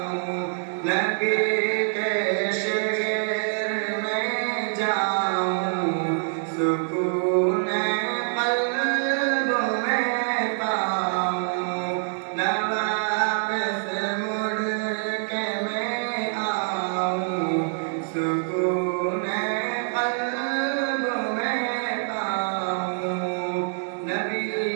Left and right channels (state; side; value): silent; left; digital silence